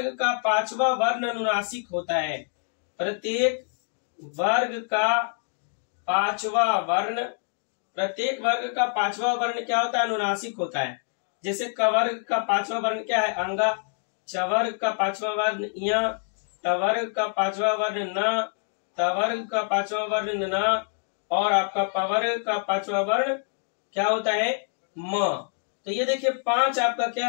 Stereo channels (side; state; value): right; silent; 61 dB below the other